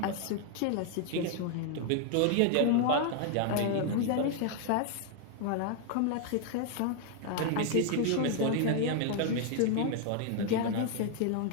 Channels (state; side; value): different; both; correlation 0.00